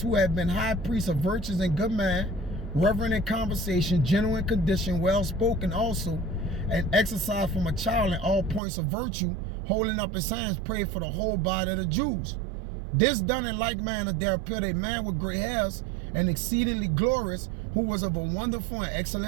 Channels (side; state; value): left; drops out; at 8.6 s